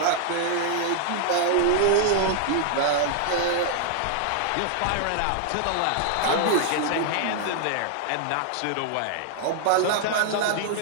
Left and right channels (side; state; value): both; different; correlation 0.00